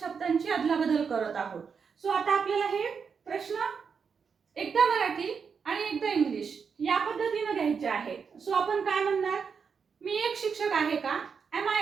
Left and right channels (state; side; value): quieter; left; 6.1 dB